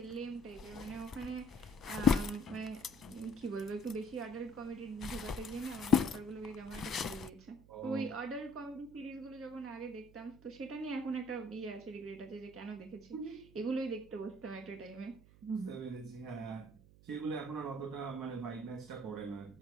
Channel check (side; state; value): right; noise; hum, 22 dB below the sound